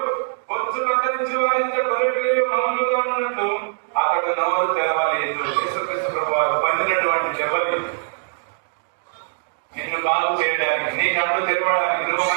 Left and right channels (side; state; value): left; silent; digital silence